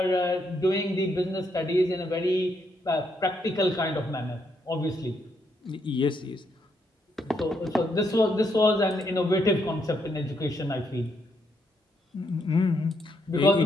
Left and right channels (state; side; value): normal; both; correlation 0.76